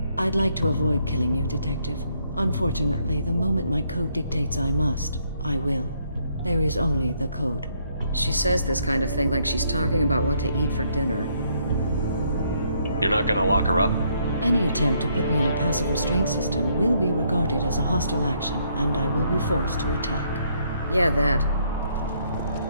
I'd like to avoid killing you, Detective. Unfortunately, the moment my code dictates I must, I will. There is only the code. She says this kind of thing like she's talking about what to eat for dinner. You're not gonna lock her up? Any attempt to put me in a passive restraint system will be regarded as a hostile action, and I will be forced to attack. Yeah, that.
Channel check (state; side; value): inverted; both; correlation -0.71